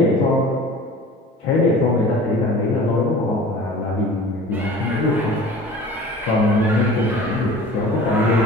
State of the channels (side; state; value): both; normal; correlation 0.42